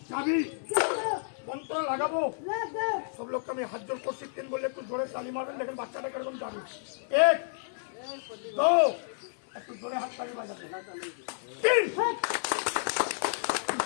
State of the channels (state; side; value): silent; right; digital silence